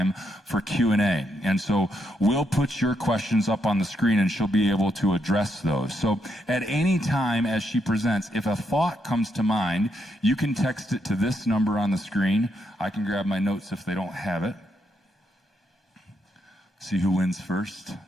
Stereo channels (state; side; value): normal; both; correlation 0.79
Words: for Q&A. And so we'll put your questions up on the screen and she'll be able to address those. So at any time as she presents, if a thought comes to mind, you can text it to this number on the screen. I can grab my notes if they don't have it. See who wins first.